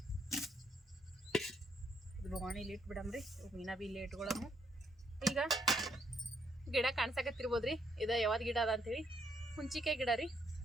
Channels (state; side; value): normal; both; correlation 0.73